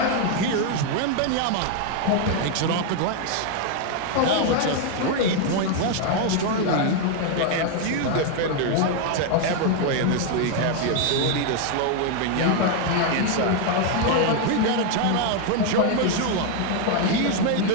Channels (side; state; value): both; different; correlation 0.01